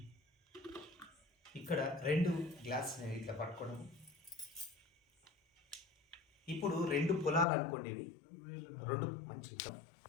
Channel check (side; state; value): right; drops out; at 7.5 s